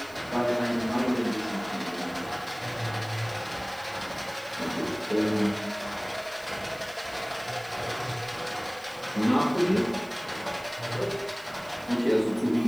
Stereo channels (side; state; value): right; noise; hiss, 23 dB below the sound